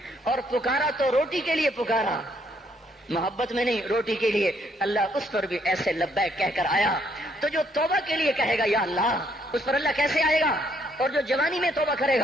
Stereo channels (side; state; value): both; normal; correlation 0.70